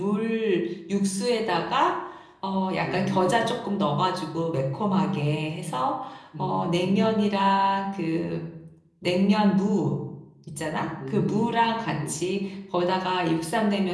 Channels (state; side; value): identical; both; correlation 1.00